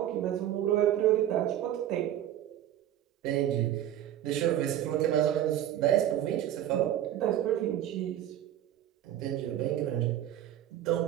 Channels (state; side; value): quieter; left; 11.8 dB